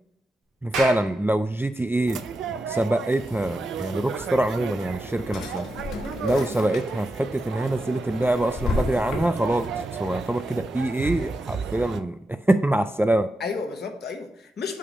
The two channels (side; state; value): both; normal; correlation 0.88